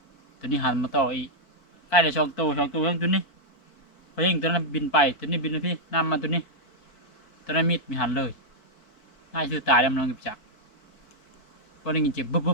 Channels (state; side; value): late; right; 4.6 ms